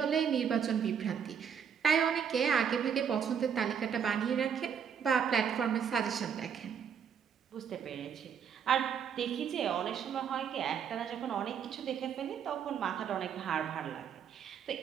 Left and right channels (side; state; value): left; quieter; 7.6 dB